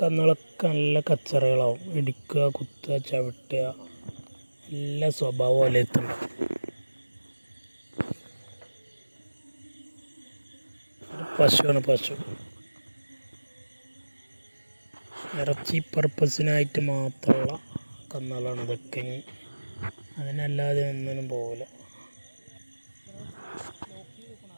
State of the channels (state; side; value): inverted; both; correlation -1.00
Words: കന്നുകളൊക്കെ നല്ല കച്ചറകളാവും. ഇടിക്കുക, കുത്തുക, ചവിട്ടുക, എല്ലാ സ്വഭാവം വലയത്തുണ്ട്. പശുവാണ്. പശു ഇറച്ചി പർപ്പസിനായിട്ട് മാത്രമുള്ള കന്നുകളാണ് ഇതൊക്കെ. അതിനല്ലാതെ ഒന്നിനും പോകില്ല.